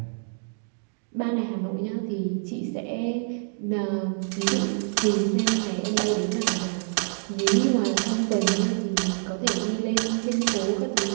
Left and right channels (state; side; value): silent; left; digital silence